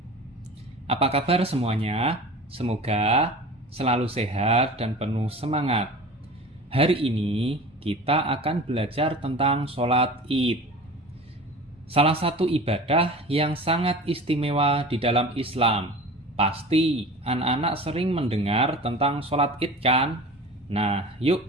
Apa kabar semuanya? Semoga selalu sehat dan penuh semangat. Hari ini kita akan belajar tentang sholat Id. Salah satu ibadah yang sangat istimewa di dalam Islam. Pasti anak-anak sering mendengar tentang sholat Id kan? Nah,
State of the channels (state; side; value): normal; both; correlation 0.37